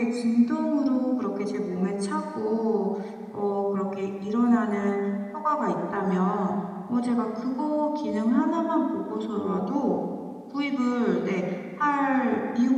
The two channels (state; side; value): identical; both; correlation 1.00